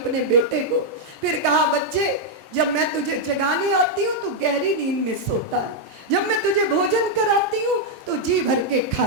बेटे को। फिर कहा बच्चे जब मैं तुझे जगाने आती हूँ तो गहरी नींद में सोता है, जब मैं तुझे भोजन कराती हूँ तो जी भर के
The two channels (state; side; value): normal; both; correlation -0.02